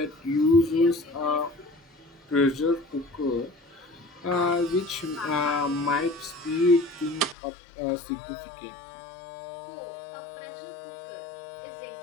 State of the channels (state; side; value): drops out; right; at 7.4 s